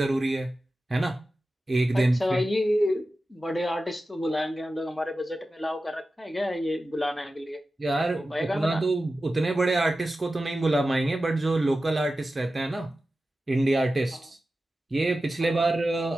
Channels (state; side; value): normal; both; correlation 0.94